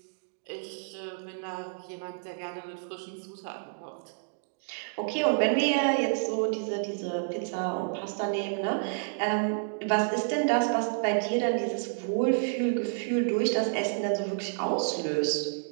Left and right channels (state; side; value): silent; left; digital silence